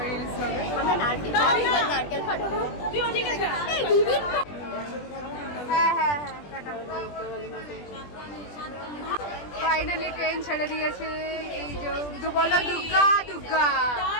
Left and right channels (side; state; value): right; late; 20 ms